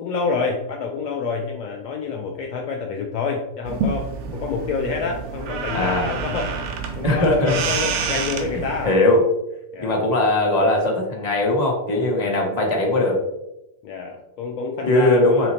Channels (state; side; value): late; left; 7.3 ms